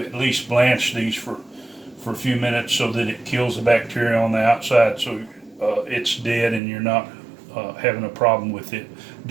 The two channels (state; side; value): drops out; left; at 6.6 s